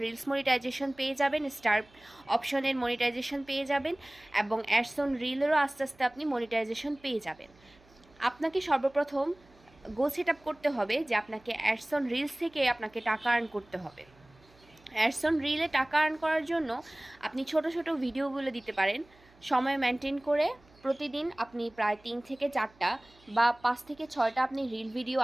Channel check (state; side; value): noise; right; hum, 29 dB below the sound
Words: রিলস মনিটাইজেশন পেয়ে যাবেন, স্টার অপশনের মনিটাইজেশন পেয়ে যাবেন এবং অ্যাডস অন রিলেরও আস্তে আস্তে আপনি মনিটাইজেশন পেয়ে যাবেন। আপনাকে সর্বপ্রথম গোল সেট আপ করতে হবে যে আপনাকে অ্যাডস অন রিলস থেকে আপনাকে টাকা আর্ন করতে হবে। অ্যাডস অন রিলে টাকা আর্ন করার জন্য আপনি ছোট ছোট ভিডিওগুলো দিতে পারেন, সময় মেনটেন করে। প্রতিদিন আপনি প্রায় 3 থেকে 4টা বা 5 থেকে 6টা আপনি রিল ভিডিও